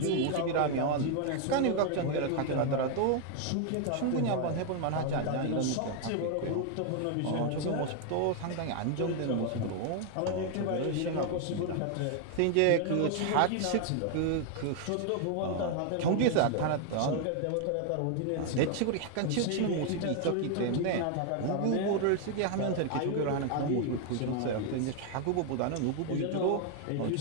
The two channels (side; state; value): both; different; correlation 0.00